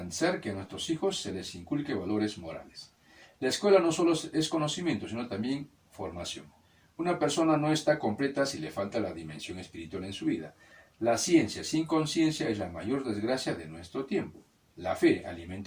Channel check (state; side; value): identical; both; correlation 1.00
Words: que a nuestros hijos se les inculque valores morales. La escuela no solo es conocimiento, sino también formación. Una persona no está completa si le falta la dimensión espiritual en su vida. La ciencia sin conciencia es la mayor desgracia de nuestro tiempo. La fe